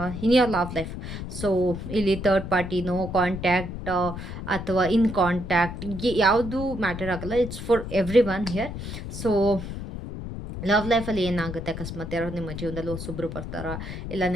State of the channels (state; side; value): noise; left; rumble, 8 dB below the sound